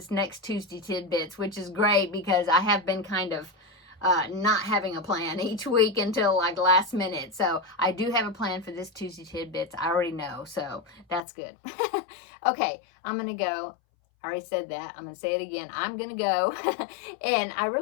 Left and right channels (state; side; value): drops out; right; at 11.2 s